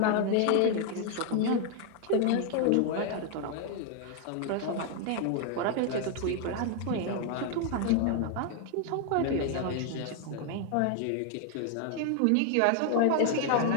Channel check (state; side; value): different; both; correlation 0.00